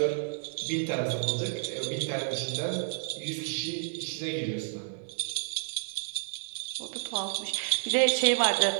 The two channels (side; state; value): left; silent; digital silence